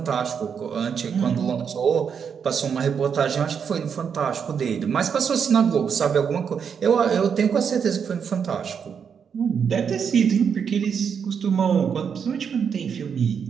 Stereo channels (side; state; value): left; quieter; 7.0 dB